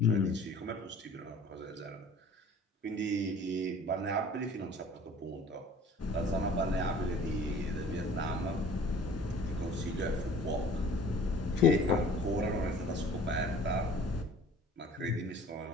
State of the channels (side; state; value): both; normal; correlation 0.48